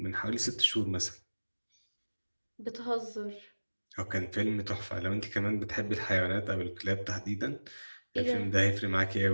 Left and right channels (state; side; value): inverted; both; correlation -1.00